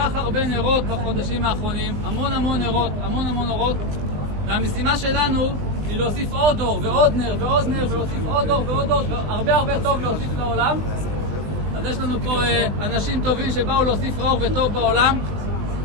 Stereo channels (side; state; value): left; late; 20 ms